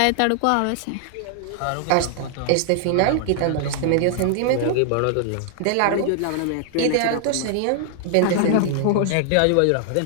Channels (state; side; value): different; both; correlation 0.00